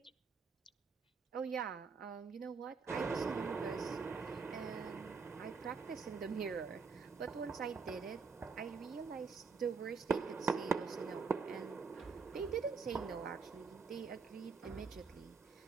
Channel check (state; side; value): quieter; left; 5.0 dB